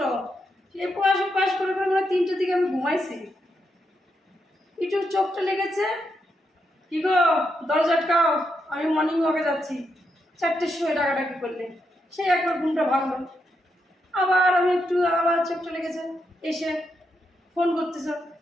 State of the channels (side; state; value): both; normal; correlation 0.82